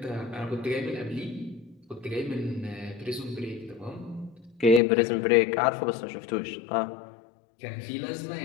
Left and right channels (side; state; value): right; drops out; at 4.8 s